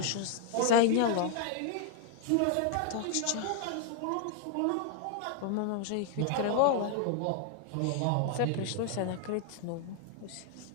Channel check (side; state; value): both; different; correlation 0.00